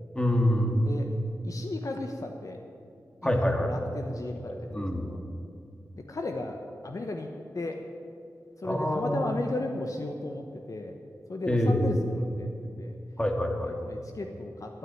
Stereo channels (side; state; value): both; normal; correlation 0.89